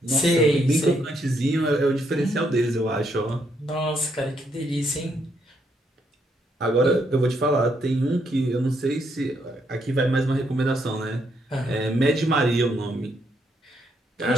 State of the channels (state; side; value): normal; both; correlation 0.75